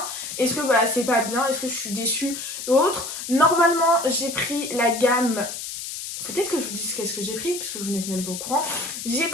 est-ce que c'est pas bien, est-ce que je suis déçue ou autre. Normalement j'ai pris la gamme, peut-être que je vous dise qu'est-ce que j'ai pris, parce que vous n'êtes même pas au courant. J'ai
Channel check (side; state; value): left; noise; hiss, 7 dB below the sound